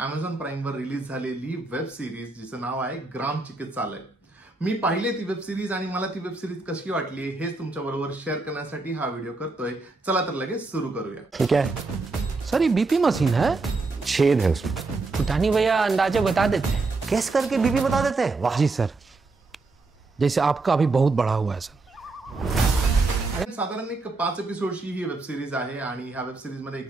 प्राईमवर रिलीज झालेली वेब सिरीज जिचं नाव आहे ग्राम चिकित्सालय. मी पाहिले ती वेब सिरीज आणि मला ती वेब सिरीज कशी वाटली हेच तुमच्या बरोबर शेअर करण्यासाठी हा व्हिडिओ करतोय. चला तर लगेच सुरू करूया. ठीक है सर, ये बीपी मशीन है, छेद है उसमें. पुटानी भैया अंदाजे बता देते हैं. कैस करके बीपी बता देते हैं. वाह जी सर, जैसे आपका अभी बहुत बड़ा हुआ है सर. साधारण एक 5 एपिसोडची ही वेब सिरीज आहे आणि ह्या वेब सिरीज मध्ये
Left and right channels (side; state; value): left; quieter; 3.6 dB